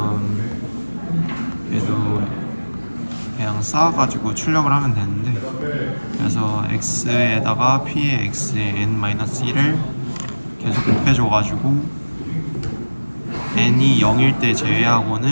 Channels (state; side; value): inverted; both; correlation -1.00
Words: 얘도 그냥 쌓아가지고 출력을 하면 되는데, 그래서 x에다가 p의 x의 n-1을 계속 곱해줘가지고 n이 0일 때